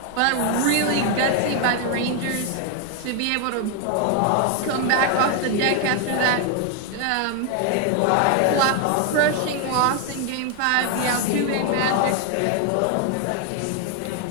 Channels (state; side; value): different; both; correlation 0.01